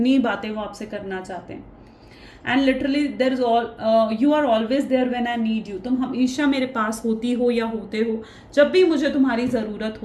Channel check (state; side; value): identical; both; correlation 1.00